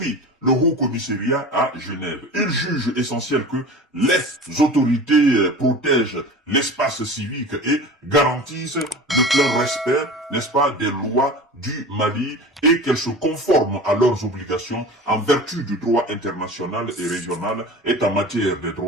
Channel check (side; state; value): both; normal; correlation 0.36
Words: le Haut-Commissariat à Genève. Il juge essentiel que les autorités protègent l'espace civique et garantissent le plein respect, n'est-ce pas, des lois du Mali et qu'elles se conforment à leurs obligations en vertu du droit international et régional et en matière des